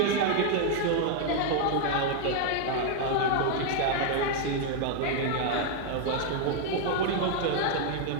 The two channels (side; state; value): both; different; correlation 0.00